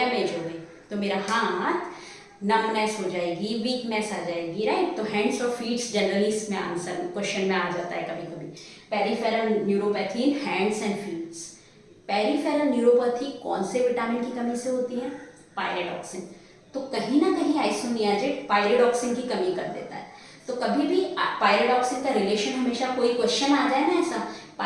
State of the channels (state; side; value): identical; both; correlation 1.00